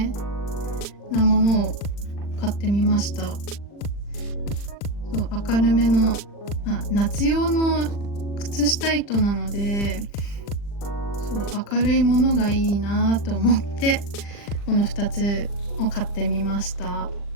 なものを買ってみました。そう、明るめの、夏用の靴下糸なので、そう明るいものがいいなと思ってこの2つを買ってみました。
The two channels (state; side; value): late; right; 40 ms